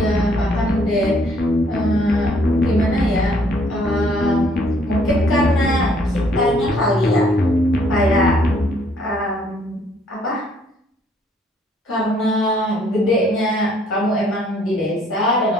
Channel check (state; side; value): normal; both; correlation 0.64